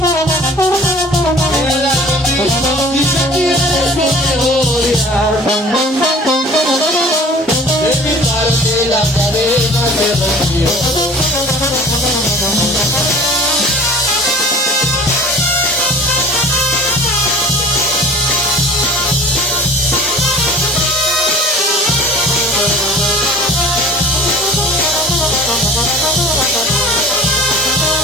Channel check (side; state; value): both; normal; correlation 0.45